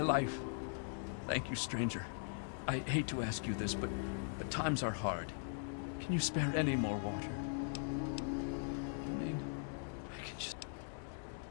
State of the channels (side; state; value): right; silent; digital silence